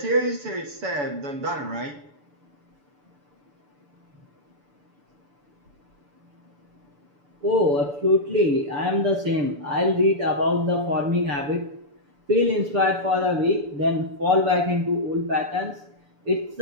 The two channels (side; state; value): left; late; 6.9 ms